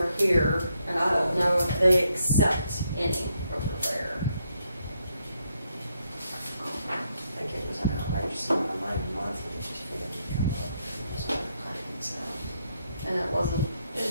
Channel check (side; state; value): both; inverted; correlation -0.77